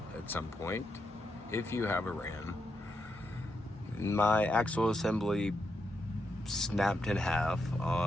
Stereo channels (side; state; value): both; normal; correlation 0.83